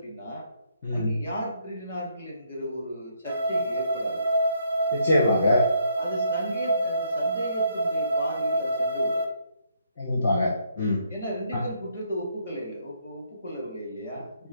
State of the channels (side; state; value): both; inverted; correlation -0.72